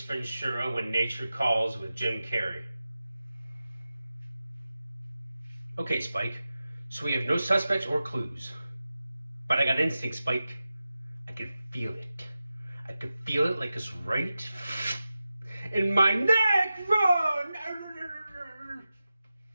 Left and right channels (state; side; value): inverted; both; correlation -0.93